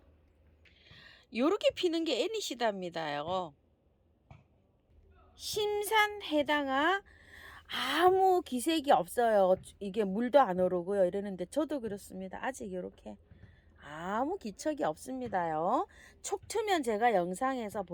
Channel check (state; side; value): identical; both; correlation 1.00